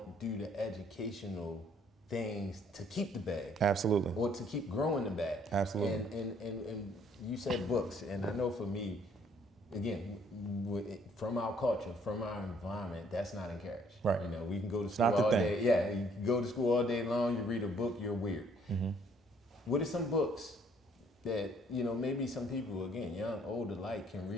do the educational things to keep the bag. Absolutely. Or to keep growing the bag. Absolutely. And you said books, and I know for me, again, from our culture, from our environment, that's not encouraged. Right. We can go to school all day. Yeah, you can go to school all day long, you read a book, you're weird. What are some books that, maybe some people, again, young, old alike, can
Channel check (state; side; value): normal; both; correlation 0.63